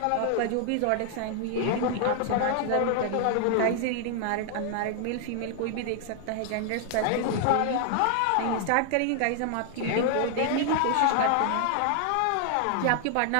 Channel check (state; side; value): different; both; correlation 0.00